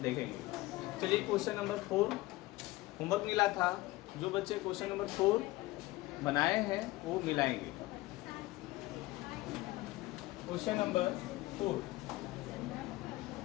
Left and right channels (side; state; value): right; quieter; 19.1 dB